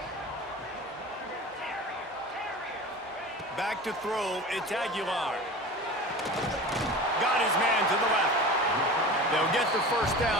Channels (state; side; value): normal; both; correlation 0.34